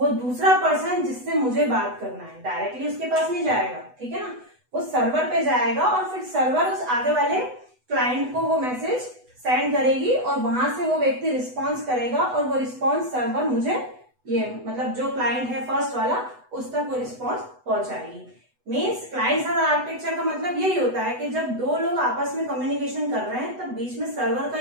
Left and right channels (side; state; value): left; late; 8.0 ms